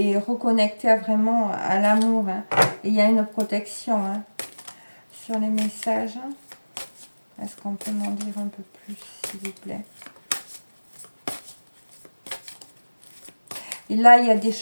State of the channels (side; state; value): both; inverted; correlation -1.00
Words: reconnecter vraiment à l'amour. Hein. Et il y a une protection, hein, sur les messages. Est-ce qu'on peut m'en dire un peu plus, s'il vous plaît? Et là, il y a des